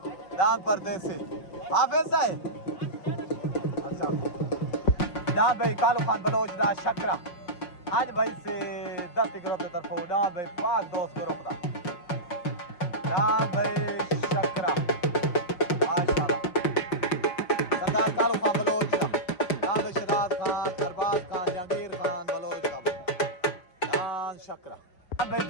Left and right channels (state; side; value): late; right; 5.6 ms